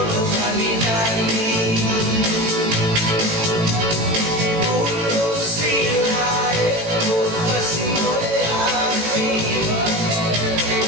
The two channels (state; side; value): late; left; 18 ms